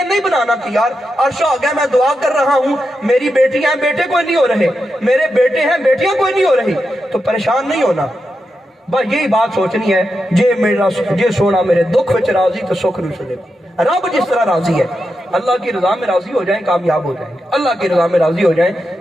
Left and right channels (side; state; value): both; normal; correlation 0.87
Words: نہیں بنانا کہ یار عرش آ گیا میں دعا کر رہا ہوں میری بیٹیاں ہیں بیٹے کوئی نہیں ہو رہے, میرے بیٹے ہیں بیٹیاں کوئی نہیں ہو رہی, تو پریشان نہیں ہونا. بس یہی بات سوچنی ہے جے سونا میرے دکھ وچ راضی تو سکھ نو سنے. رب جس طرح راضی ہے اللہ کی رضا میں راضی ہو جائیں کامیاب ہو جائیں گے. اللہ کی رضا میں راضی ہو جائیں